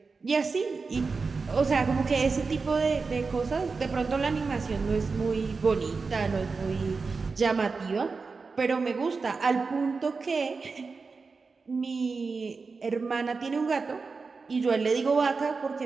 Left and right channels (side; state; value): left; quieter; 4.5 dB